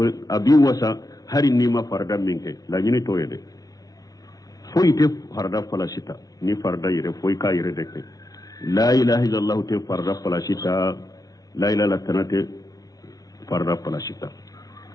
abi wasa hari nima farada minke la nyini to yede foi te farada falasita ni farada yire foi ka yire deke la ilaha illallah te farada falasita la ilaha illa tanate farada falasita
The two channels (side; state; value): right; late; 0.18 ms